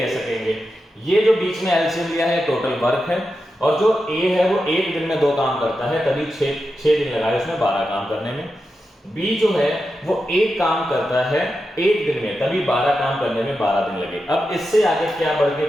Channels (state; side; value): normal; both; correlation 0.89